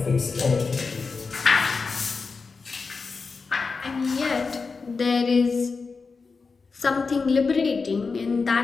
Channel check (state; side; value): quieter; right; 4.6 dB